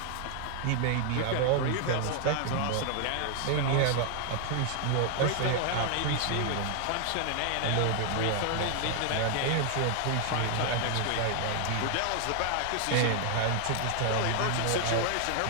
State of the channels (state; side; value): different; both; correlation 0.00